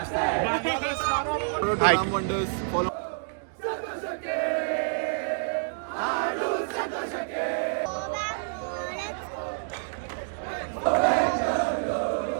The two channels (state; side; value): silent; left; digital silence